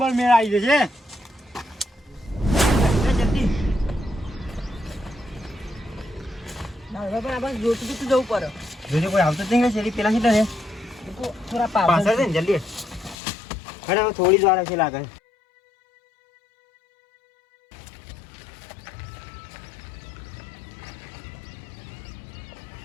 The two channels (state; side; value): drops out; right; at 13.2 s